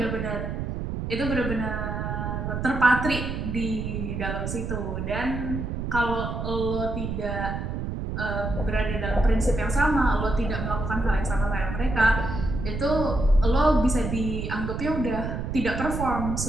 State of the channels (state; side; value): noise; right; rumble, 4 dB below the sound